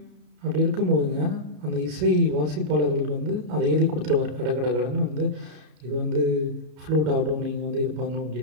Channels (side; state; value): left; late; 33 ms